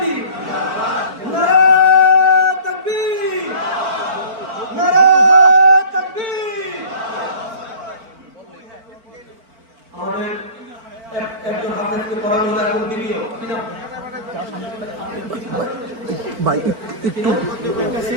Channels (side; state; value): left; late; 4.4 ms